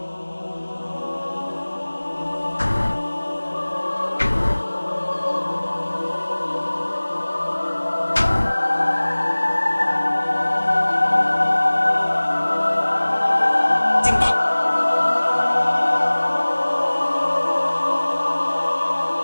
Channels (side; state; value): both; inverted; correlation -1.00